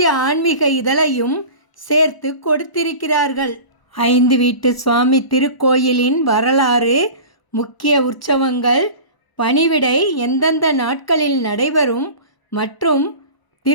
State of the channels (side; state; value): right; late; 1.0 ms